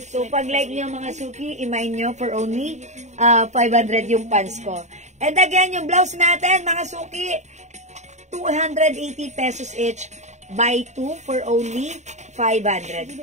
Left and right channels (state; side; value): late; left; 0.34 ms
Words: So, pag like nyo mga suki, imay nyo for only 500 yung pants ko. And again, yung blouse natin, mga suki, 280 pesos each. Buy 2 for only 500.